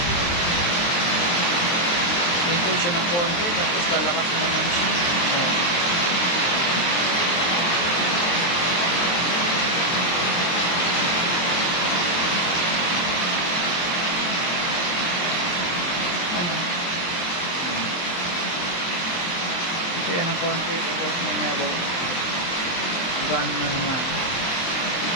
Hinto siya ng konti tapos lalakas na naman siya. Hinto yan ng konti tapos may nabaw. Gano'n na naman.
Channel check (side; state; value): right; late; 23 ms